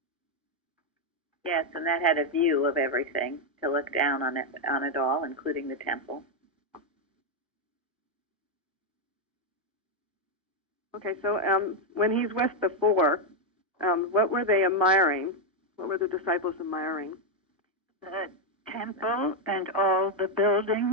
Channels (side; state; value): both; normal; correlation 0.03